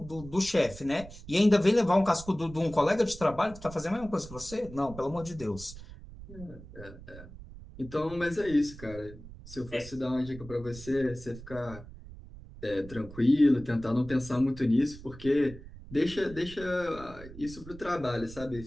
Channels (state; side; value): noise; right; rumble, 16 dB below the sound